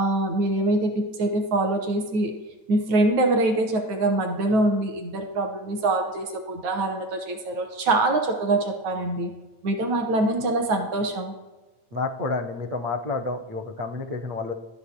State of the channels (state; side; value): late; left; 9.3 ms